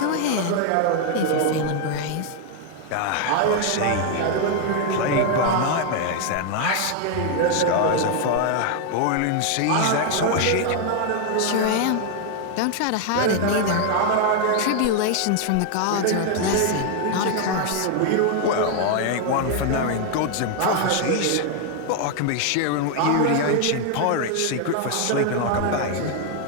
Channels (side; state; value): both; different; correlation 0.00